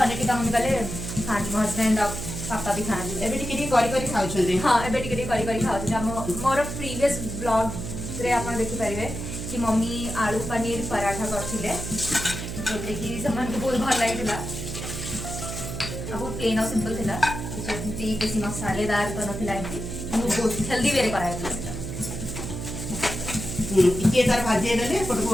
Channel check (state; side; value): noise; right; hum, 6 dB below the sound